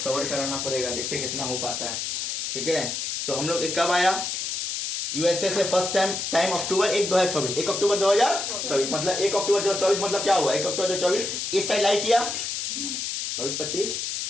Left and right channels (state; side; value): noise; left; hiss, 3 dB below the sound